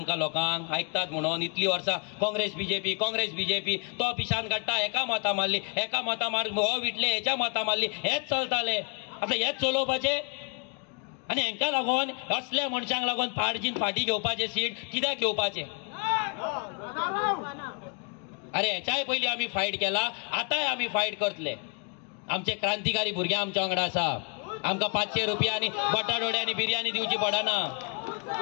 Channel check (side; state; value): right; quieter; 36.3 dB